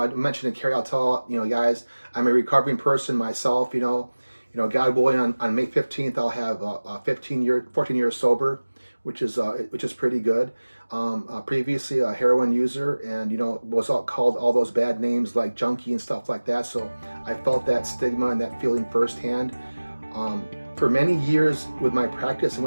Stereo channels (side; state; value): both; inverted; correlation -1.00